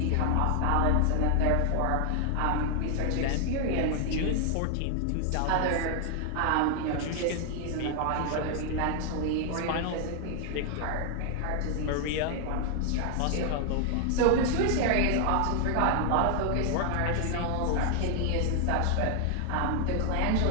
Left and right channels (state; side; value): different; both; correlation 0.00